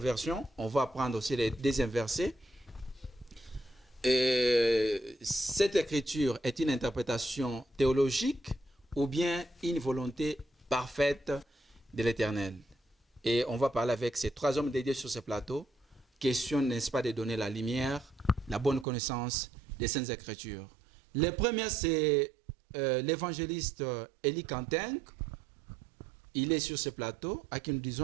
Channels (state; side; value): drops out; left; at 18.9 s